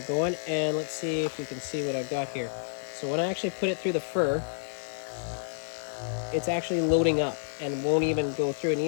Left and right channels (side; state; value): right; silent; digital silence